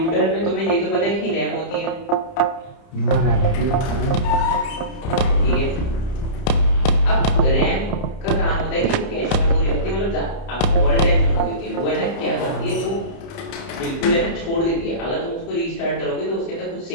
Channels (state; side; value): late; right; 30 ms